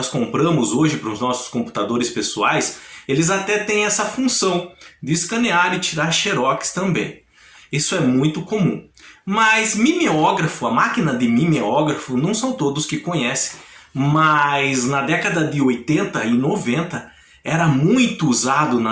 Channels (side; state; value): both; identical; correlation 1.00